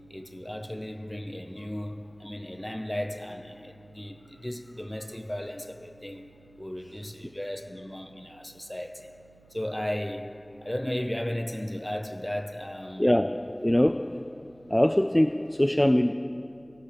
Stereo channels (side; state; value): right; noise; hum, 28 dB below the sound